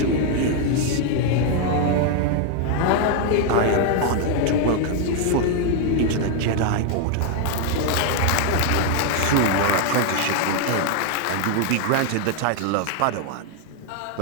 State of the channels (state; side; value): different; both; correlation 0.00